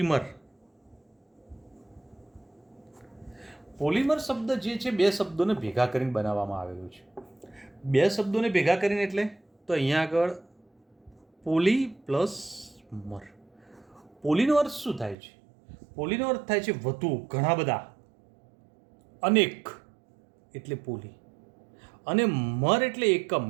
પોલિમર શબ્દ જે છે બે શબ્દોને ભેગા કરીને બનાવવામાં આવેલું છે. બે શબ્દોને ભેગા કરીને એટલે તો અહીંયા આગળ પોલી પ્લસ મર. પોલીનો અર્થ શું થાય છે? પોલીનો અર્થ થાય છે વધુ, ઘણા બધા, અનેક એટલે પોલી, અને મર એટલે એકમ,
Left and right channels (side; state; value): left; drops out; at 15.2 s